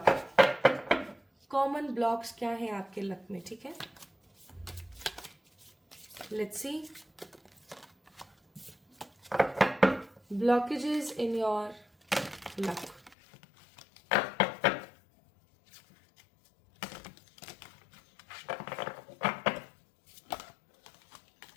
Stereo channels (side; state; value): right; drops out; at 13.2 s